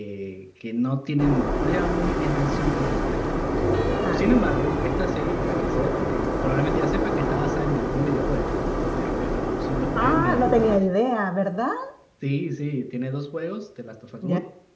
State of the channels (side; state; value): both; identical; correlation 1.00